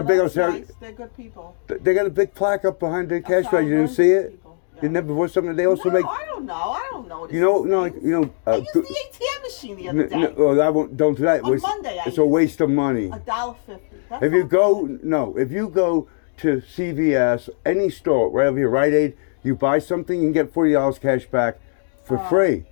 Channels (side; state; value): right; silent; digital silence